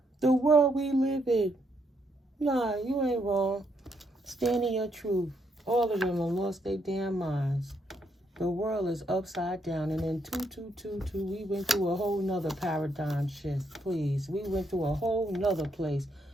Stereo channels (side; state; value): both; normal; correlation 0.76